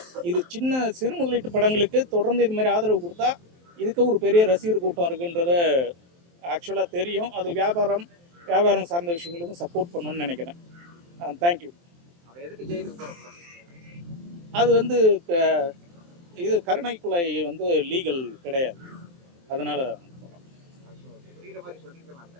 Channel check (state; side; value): late; left; 23 ms